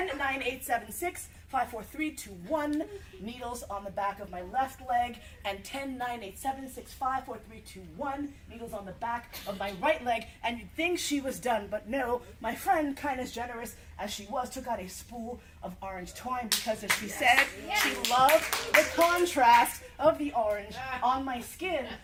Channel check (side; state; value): both; identical; correlation 1.00